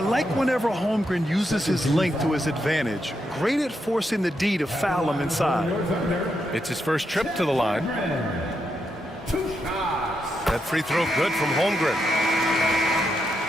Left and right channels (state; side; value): normal; both; correlation 0.83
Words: whenever Holmgren uses his length to his advantage. Great at forcing the D to foul him inside. It's his first trip to the line. That free throw good from Holmgren.